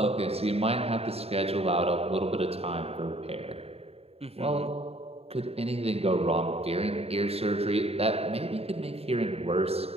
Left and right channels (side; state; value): left; late; 0.29 ms